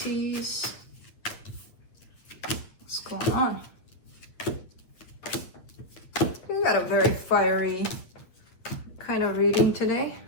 what's going on? We got a very fiery kind of reading today.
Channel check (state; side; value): late; right; 8.6 ms